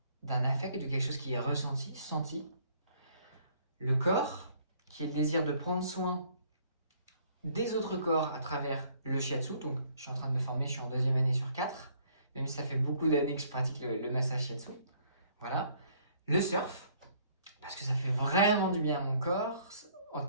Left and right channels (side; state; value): both; inverted; correlation -0.62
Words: d'un affect, de quelque chose qui est ressenti, senti. Le corps, qui est le désir de prendre soin des autres corps à travers le shiatsu. Donc je suis en train de me former, je suis en 2e année sur 4, même si ça fait beaucoup d'années que je pratique le massage shiatsu. Voilà. Le surf, parce que ça fait vraiment du bien à mon corps, en